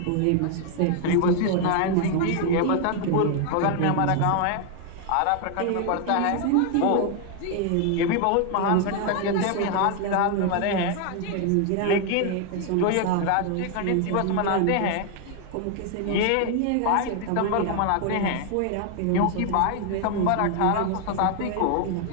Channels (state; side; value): different; both; correlation 0.00